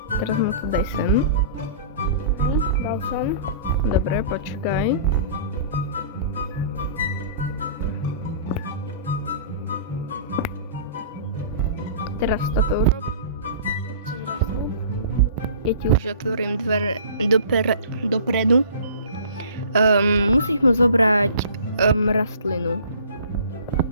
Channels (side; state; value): both; inverted; correlation -0.44